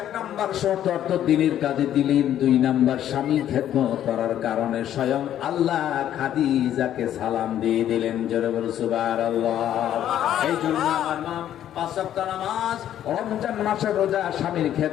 নাম্বার শর্ত অর্থ দিনের কাজে দিলেন, দুই নাম্বার স্বামী খেদমত করার কারণে স্বয়ং আল্লাহ খাদিজাকে সালাম দিয়ে দিলেন। জোরে বলে সুবহানাল্লাহ। এই জন্য আমার মা পাঁচ ওয়াক্ত নামাজ, রমজান মাসের রোজা, স্বামীর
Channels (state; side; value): quieter; right; 11.1 dB